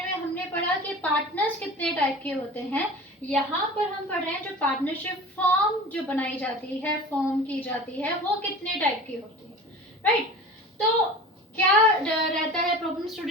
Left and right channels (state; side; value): normal; both; correlation 0.37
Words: में हमने पढ़ा कि पार्टनर्स कितने टाइप के होते हैं। यहाँ पर हम पढ़ रहे हैं जो पार्टनरशिप फॉर्म जो बनाई जाती है, फॉर्म की जाती है, वो कितने टाइप की होती है, राइट? तो क्या रहता है प्रॉब्लम